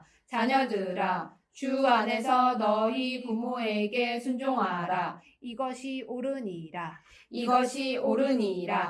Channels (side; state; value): both; identical; correlation 1.00